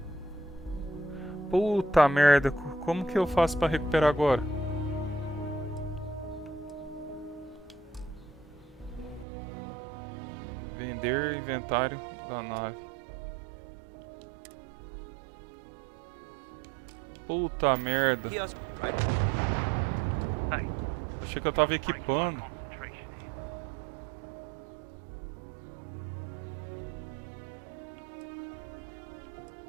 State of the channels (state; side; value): drops out; left; at 9.2 s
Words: Puta merda, como que eu faço pra recuperar agora? Vender inventário da nave. Puta merda. Achei que eu tava equipando.